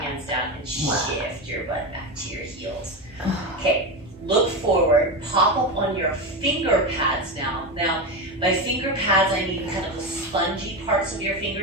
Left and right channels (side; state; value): both; normal; correlation 0.17